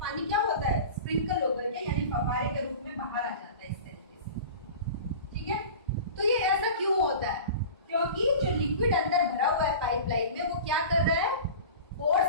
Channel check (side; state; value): both; inverted; correlation -0.36